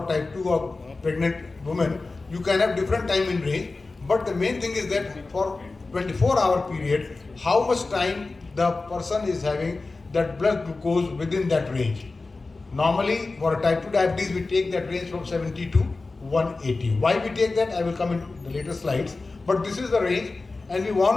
type 2 or pregnant women, you can have different time in range. But the main thing is that for 24-hour period, how much time the person is having that blood glucose within that range. Normally, for a type 2 diabetes, we take that range from 70 to 180. Why we take that, I will come in the later slides. But this is the range, and we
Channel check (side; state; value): right; quieter; 3.6 dB